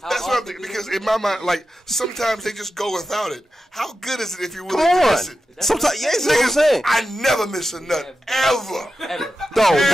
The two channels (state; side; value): normal; both; correlation 0.92